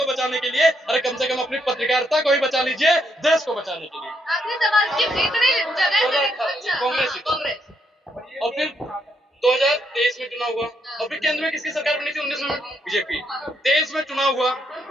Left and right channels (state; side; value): normal; both; correlation 0.75